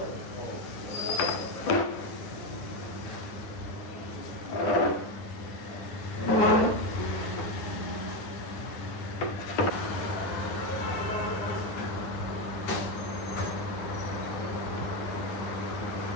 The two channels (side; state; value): right; late; 9.7 ms